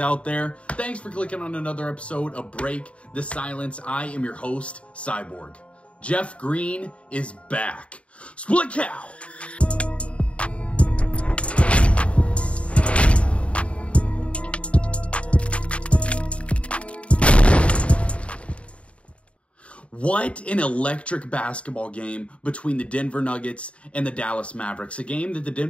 out there? Thanks for clicking on another episode of Break the Silence. I am your host, Cyborg. Jeff Green is back. Split cow! What an electric basketball game between the Denver Nuggets and the Dallas Mavericks. A game that the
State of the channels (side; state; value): right; late; 0.062 ms